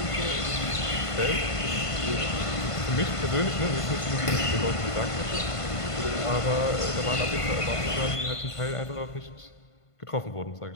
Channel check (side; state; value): right; late; 1.5 ms